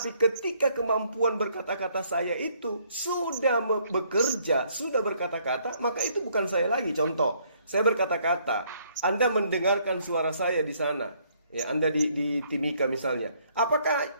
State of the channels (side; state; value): both; inverted; correlation -0.66